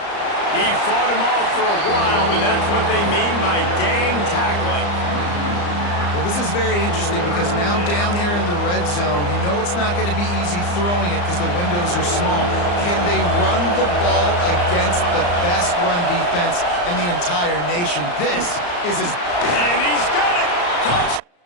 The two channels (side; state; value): right; late; 34 ms